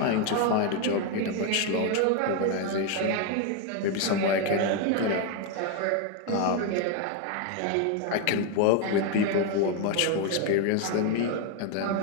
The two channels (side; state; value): both; different; correlation 0.01